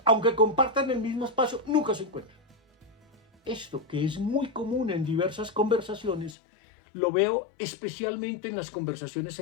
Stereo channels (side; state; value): right; drops out; at 6.4 s